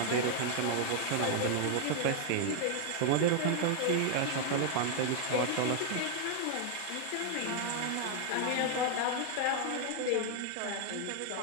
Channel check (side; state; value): both; different; correlation 0.00